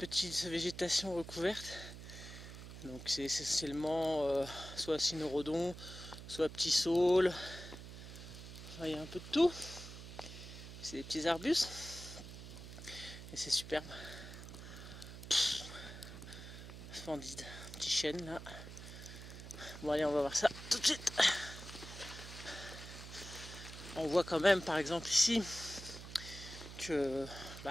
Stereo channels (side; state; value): right; noise; hum, 12 dB below the sound